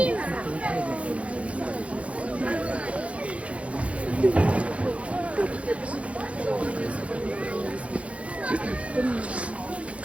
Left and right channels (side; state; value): left; late; 0.063 ms